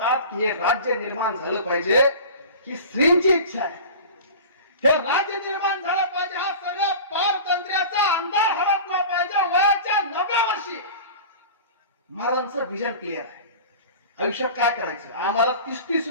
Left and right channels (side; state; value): both; inverted; correlation -0.37